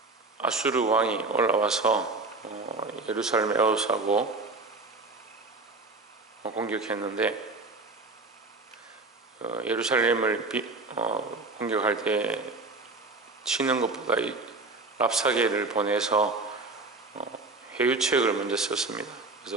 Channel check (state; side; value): quieter; left; 3.5 dB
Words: 아수르 왕이 올라와서 예루살렘 에워싸고 공격했는데, 예루살렘을 공격할 때 치는 것보다 이 랍사게를 보내서 회유책을 먼저 썼습니다.